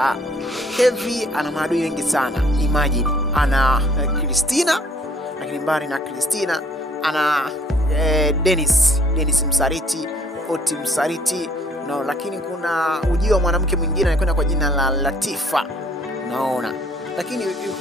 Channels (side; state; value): both; normal; correlation 0.60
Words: Kevin ana maadui wengi sana. Imagine ana Christina, lakini mbali na Christina ana Dennis msaliti, Oti msaliti, no, lakini kuna ujio wa mwanamke mwingine anakwenda kwa jina la Latifa. Naona. Lakini